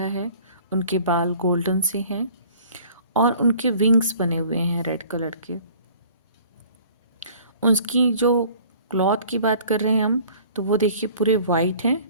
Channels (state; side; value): inverted; both; correlation -0.51